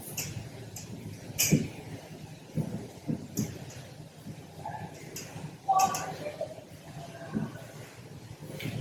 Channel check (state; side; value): identical; both; correlation 1.00